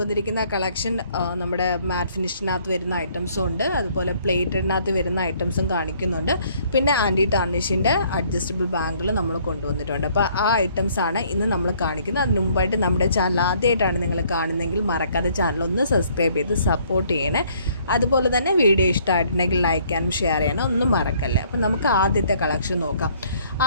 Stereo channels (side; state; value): both; inverted; correlation -0.62